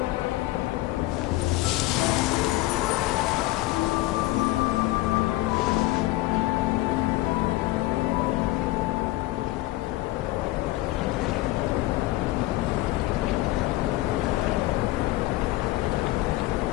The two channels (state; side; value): quieter; right; 18.0 dB